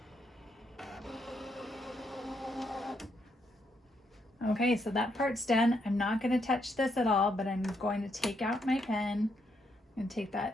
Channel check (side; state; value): both; normal; correlation 0.77